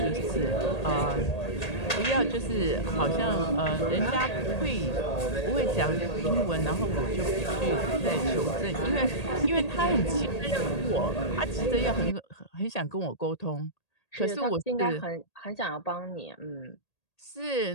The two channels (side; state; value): right; late; 1.8 ms